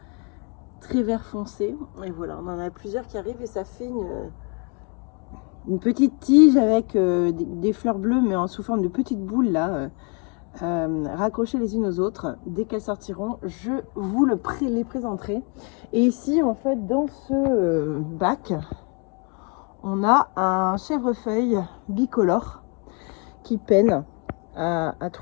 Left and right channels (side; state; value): right; quieter; 34.2 dB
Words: vert foncé. Et voilà, on en a plusieurs qui arrivent et ça fait une petite tige avec des fleurs bleues, mais sous forme de petites boules là, raccrochées les unes aux autres. Dès qu'elles sortiront, je vous les présenterai. Et ici, en fait, dans ce bac, on a un chèvrefeuille bicolore qui peine à